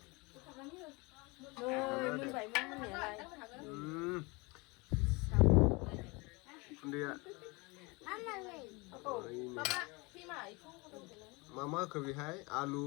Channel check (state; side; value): quieter; right; 26.6 dB